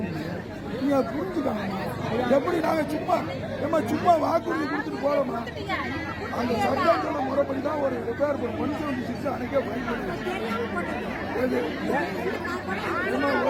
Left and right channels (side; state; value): both; identical; correlation 1.00